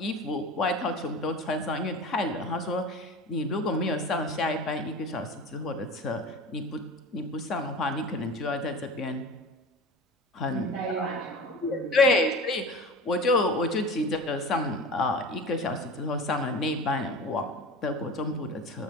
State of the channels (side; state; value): both; normal; correlation 0.33